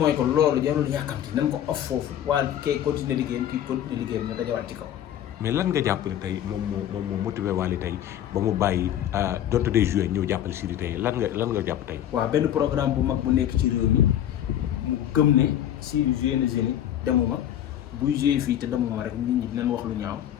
ko loolu jarul yàkkamti nañ ko off foofu Wally kay continuer liggéeyam kii continuer liggéeyam ñu dajawaat ci kaw. mais lan nga jàpp ne tey moom moo motivé Wally tey ba mu bàyyi donte day joué ñëw jàppale Sidi tey lan nga jàpp tey. waaw benn programme bu mag bu nekk ci réew mi mu gëm ne Sidi joué na Zénith demuma buy joué fii te demuma rek nit ñi dinañ wax lu ñaaw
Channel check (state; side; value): quieter; right; 11.0 dB